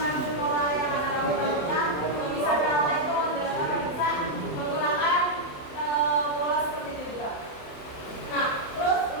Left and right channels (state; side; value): late; right; 27 ms